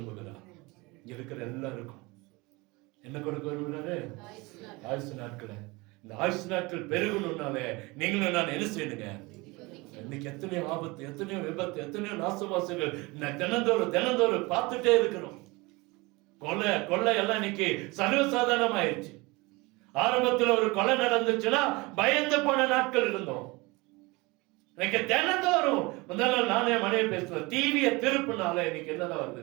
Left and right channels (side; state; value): left; quieter; 24.3 dB